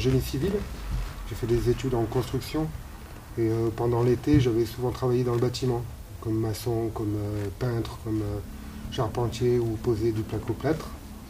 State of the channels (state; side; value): identical; both; correlation 1.00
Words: civil. J'ai fait des études en construction et pendant l'été, j'avais souvent travaillé dans le bâtiment, comme maçon, comme peintre, comme charpentier ou poser du placo-plâtre.